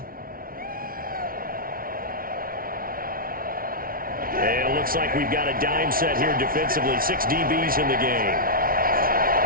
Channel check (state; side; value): late; left; 0.42 ms